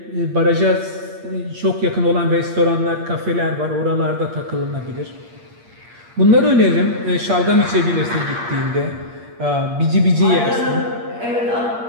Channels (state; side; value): late; left; 8.5 ms